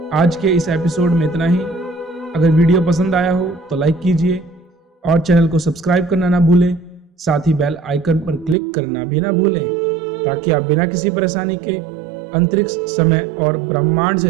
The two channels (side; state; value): left; drops out; at 8.6 s